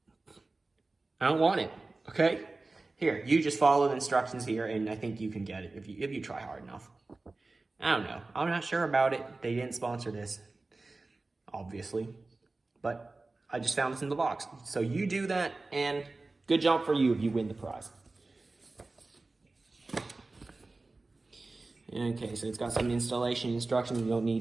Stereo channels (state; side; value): quieter; left; 3.4 dB